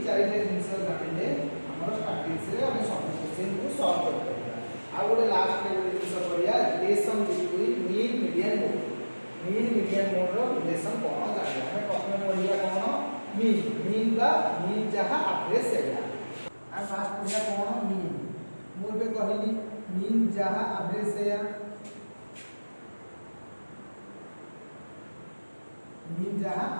चारिटा जिनिस जानिले हमर स्टैटिक्स रे हम सब क्वेश्चन को सॉल्व कर पाबा। आ गोटे लास्ट में गोटे जिनिस पढ़िया relation between mean median mode. Mean median mode रो रिलेशन कौन जानिले हम प्रथम पढ़िया कौन? मीन। मीन का मीन जहाँ एवरेज सेया। आ फास्ट पढ़िया कौन? मीन। मु बे कहली मीन जहाँ एवरेज सेया। मीन जहाँ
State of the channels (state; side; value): inverted; both; correlation -1.00